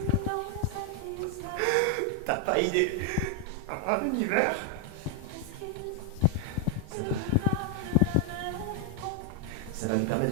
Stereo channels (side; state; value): both; different; correlation 0.00